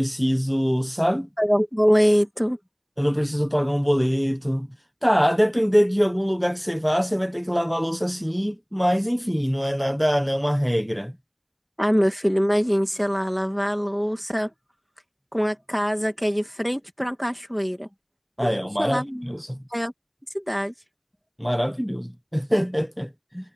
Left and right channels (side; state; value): both; identical; correlation 1.00